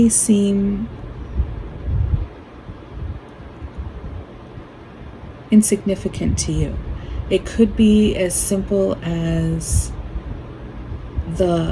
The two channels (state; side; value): identical; both; correlation 1.00